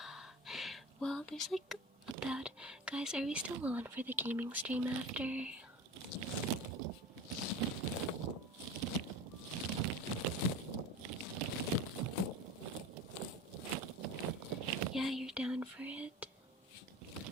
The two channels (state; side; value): normal; both; correlation 0.32